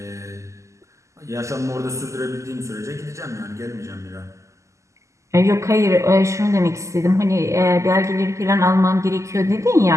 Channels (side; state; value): left; late; 0.15 ms